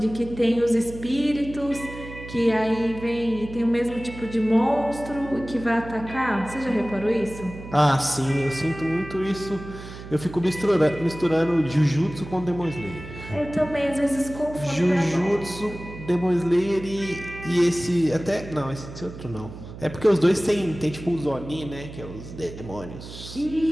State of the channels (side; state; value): right; noise; hum, 13 dB below the sound